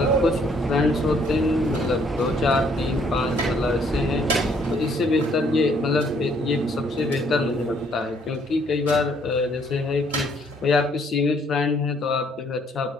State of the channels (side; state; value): both; normal; correlation 0.65